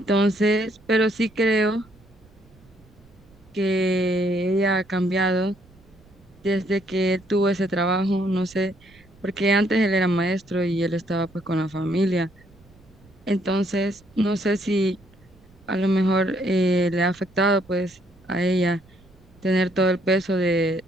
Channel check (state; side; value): noise; right; rumble, 28 dB below the sound